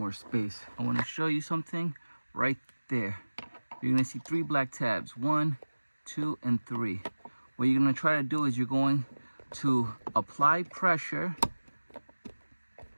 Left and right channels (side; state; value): both; inverted; correlation -1.00